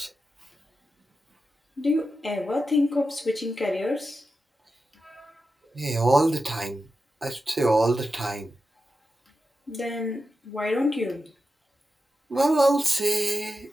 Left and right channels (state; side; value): normal; both; correlation 0.90